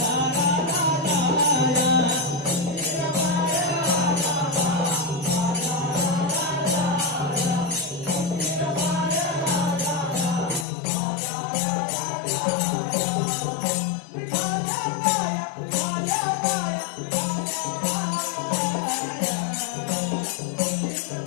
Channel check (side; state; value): right; drops out; at 10.7 s